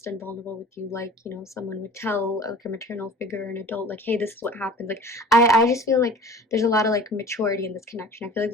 and vulnerable with you, like, you know, someone would tell like a maternal figure or an adult, like, hey, this is what happened. Like, I just feel like there's a lot of like maturity in this connection. I feel like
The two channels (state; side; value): normal; both; correlation 0.43